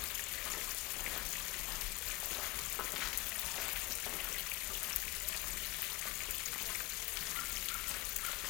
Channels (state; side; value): quieter; right; 21.9 dB